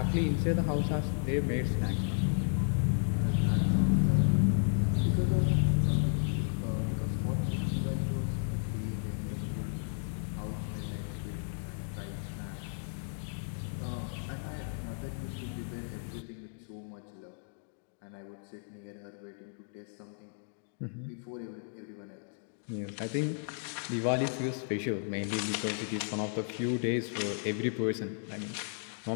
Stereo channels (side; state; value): right; silent; digital silence